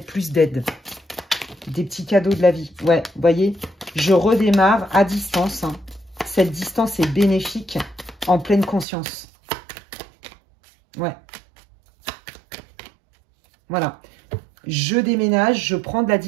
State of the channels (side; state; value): left; drops out; at 8.8 s